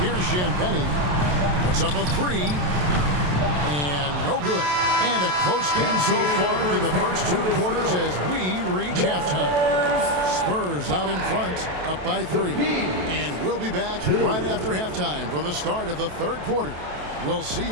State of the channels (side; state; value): left; late; 27 ms